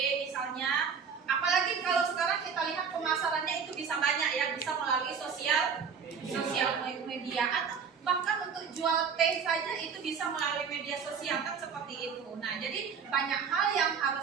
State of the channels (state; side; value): quieter; left; 6.3 dB